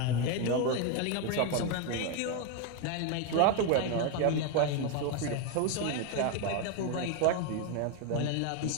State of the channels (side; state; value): both; different; correlation 0.02